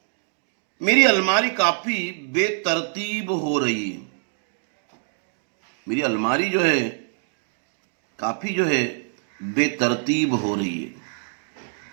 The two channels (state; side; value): silent; left; digital silence